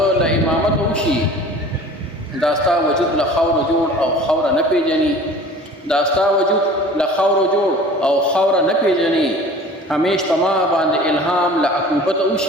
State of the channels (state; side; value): normal; both; correlation 0.44